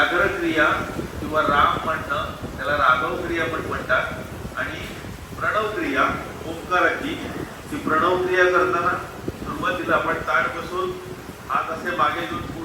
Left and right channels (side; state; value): both; identical; correlation 1.00